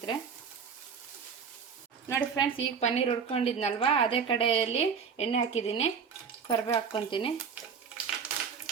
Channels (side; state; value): left; quieter; 6.4 dB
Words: ನೋಡಿ ಫ್ರೆಂಡ್ಸ್, ಈಗ ಪನ್ನೀರ್ ಹುರ್ಕೊಂಡಿದ್ನಲ್ವಾ, ಅದೇ ಕಡೆಯಲ್ಲಿ ಎಣ್ಣೆ ಹಾಕಿದ್ದೀನಿ. ಕರಿಬೇವು ಹಾಕ್ಕೊತೀನಿ.